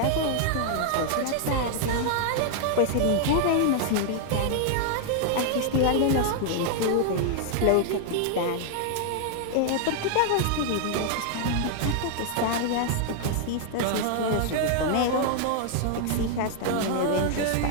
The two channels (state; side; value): different; both; correlation -0.01